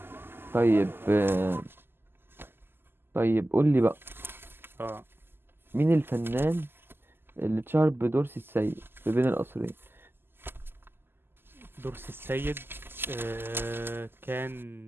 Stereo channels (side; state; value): left; late; 0.11 ms